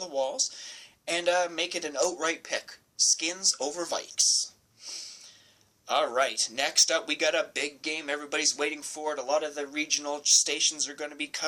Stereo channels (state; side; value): identical; both; correlation 1.00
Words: walls and make it an outright pick. Skins over Vikes. Alright, next up we got a big game everybody's waiting for it. A lot of the regional stations are going to be